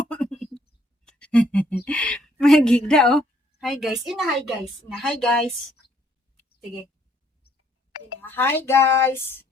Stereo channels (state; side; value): normal; both; correlation 0.66